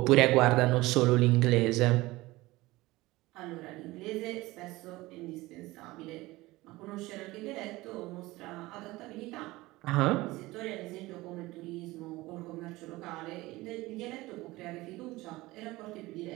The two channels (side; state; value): left; quieter; 19.7 dB